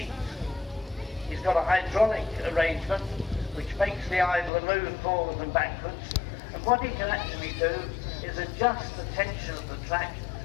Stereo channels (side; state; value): right; drops out; at 4.5 s